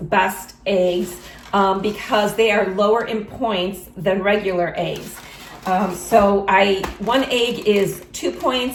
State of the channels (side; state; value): both; identical; correlation 1.00